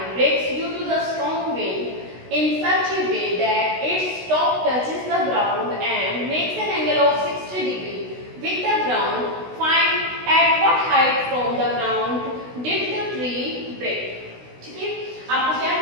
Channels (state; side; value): late; left; 16 ms